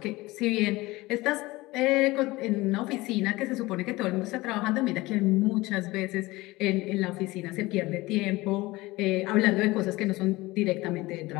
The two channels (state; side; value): quieter; right; 20.4 dB